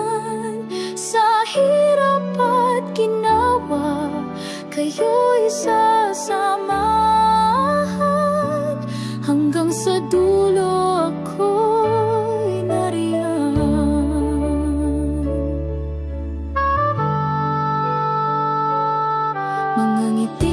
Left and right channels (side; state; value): both; identical; correlation 1.00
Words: Sa hirap at ginawa, kayo'y sasamahan, hanggang sa dulo ako'y nariyan. Mga